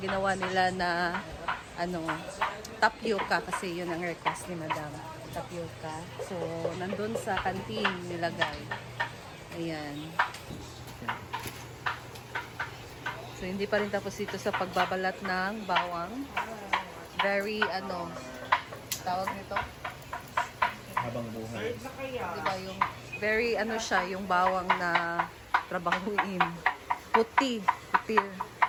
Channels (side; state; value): both; identical; correlation 1.00